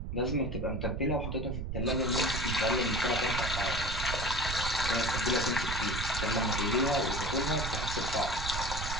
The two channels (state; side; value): noise; right; rumble, 5 dB below the sound